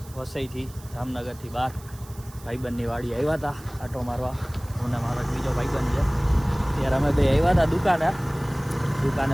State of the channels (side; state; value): right; noise; hiss, 22 dB below the sound